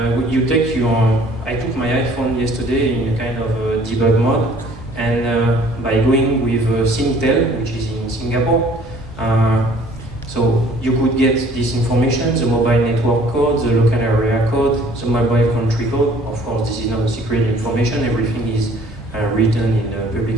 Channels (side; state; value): both; normal; correlation 0.54